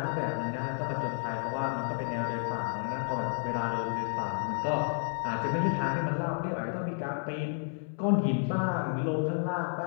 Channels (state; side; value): silent; right; 57 dB below the other